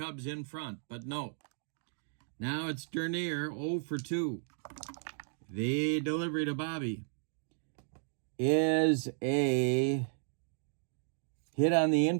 in front. But no. Now it's Dernier, 0 for 2. The delivery to Bobby is a hit on the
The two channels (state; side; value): silent; left; digital silence